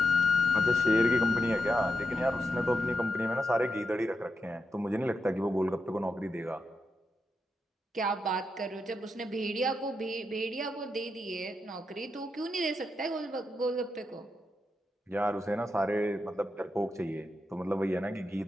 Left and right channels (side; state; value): both; normal; correlation 0.85